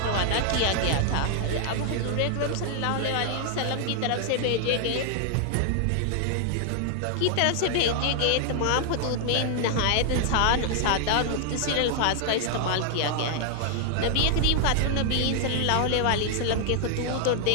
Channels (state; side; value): different; both; correlation 0.00